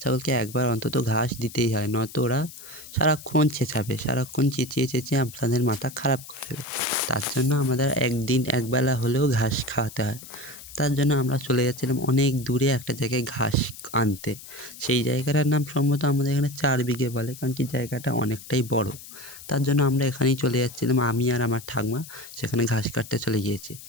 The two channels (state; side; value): noise; left; hiss, 16 dB below the sound